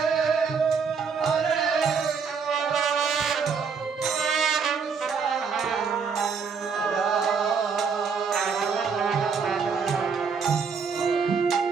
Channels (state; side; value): quieter; left; 5.7 dB